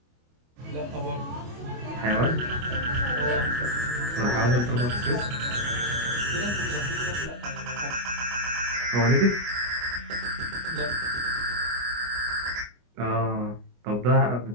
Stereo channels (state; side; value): late; left; 25 ms